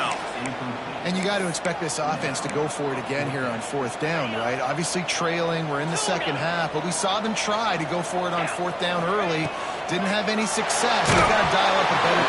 And you got to expect this offense to go for it again here on fourth down, right? Obviously trailing, we're in the second half, but we saw them try to go for it on fourth down early. Didn't have any success. They've got to dial up a better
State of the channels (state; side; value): identical; both; correlation 1.00